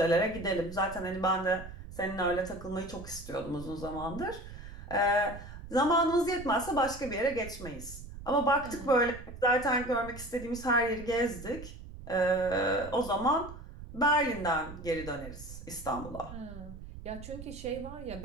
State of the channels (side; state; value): right; noise; rumble, 13 dB below the sound